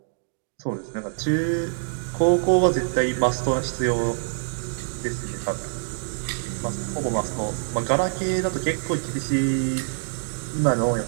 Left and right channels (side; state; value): left; silent; digital silence